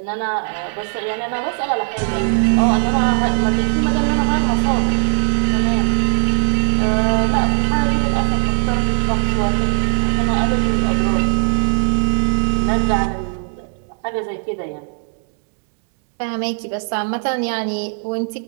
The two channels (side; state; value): left; silent; digital silence